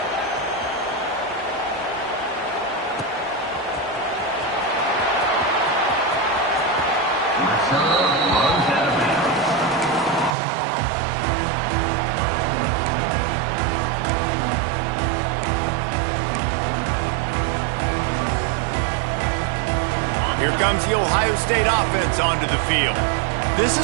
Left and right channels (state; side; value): drops out; left; at 10.3 s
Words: Here comes the Ohio State offense onto the field. This